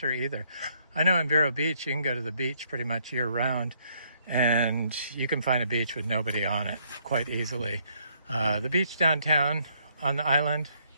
either. I know in Vero Beach, you can go to the beach pretty much year round, and you can find a beach with nobody on it quite easily. The beach downtown on the island,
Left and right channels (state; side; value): inverted; both; correlation -0.69